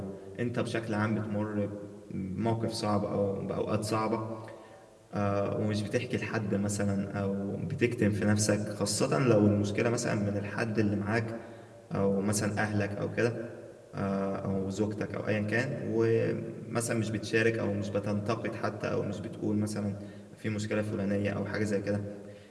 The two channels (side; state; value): both; identical; correlation 1.00